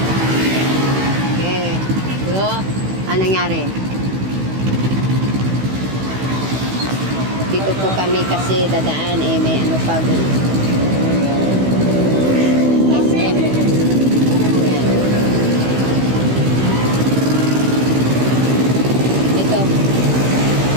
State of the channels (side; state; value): left; late; 16 ms